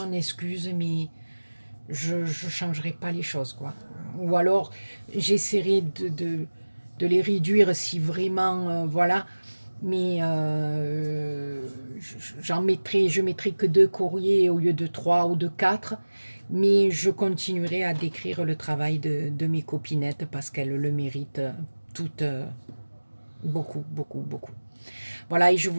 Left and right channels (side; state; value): both; inverted; correlation -1.00